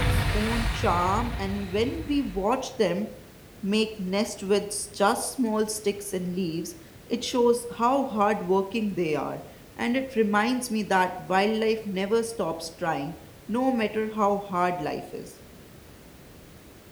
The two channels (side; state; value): both; identical; correlation 1.00